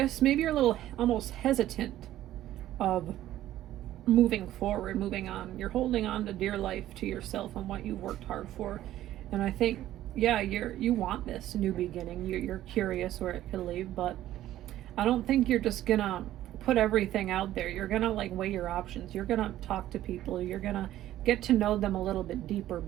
Maybe you're a little almost hesitant of moving forward, moving on. You're holding on to dear life to yourself and what you've worked hard for. And I think, yeah, you want this new beginning. You're curious where it could lead, but I don't think you're just gonna put everything out there. You're gonna like weigh your options. You're gonna talk to people. You're gonna get to know them a little bit deeper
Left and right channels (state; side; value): quieter; left; 13.5 dB